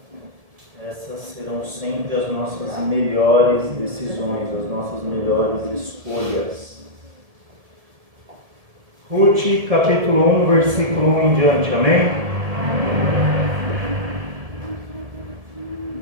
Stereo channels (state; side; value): late; left; 1.7 ms